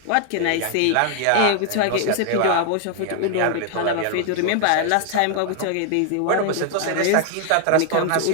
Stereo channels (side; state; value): both; different; correlation 0.00